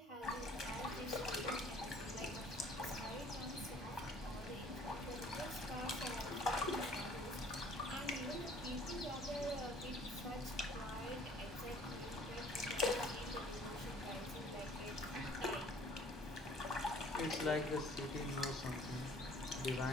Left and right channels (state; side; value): normal; both; correlation 0.54